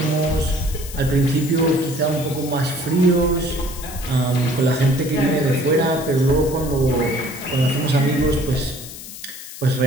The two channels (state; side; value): noise; left; hiss, 13 dB below the sound